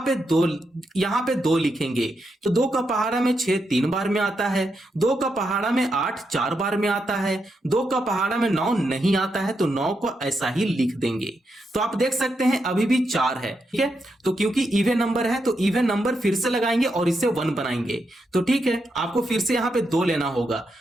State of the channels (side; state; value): both; normal; correlation 0.83